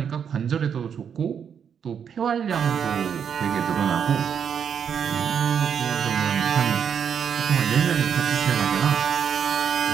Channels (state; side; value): quieter; left; 7.6 dB